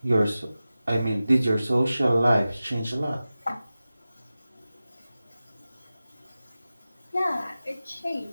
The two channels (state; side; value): inverted; both; correlation -0.95